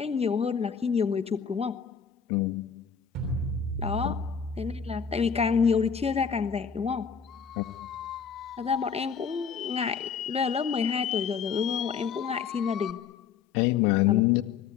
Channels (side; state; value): right; quieter; 6.7 dB